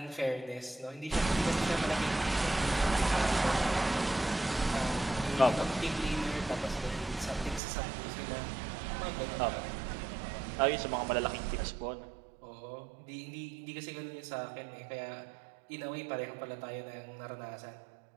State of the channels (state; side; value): drops out; left; at 7.6 s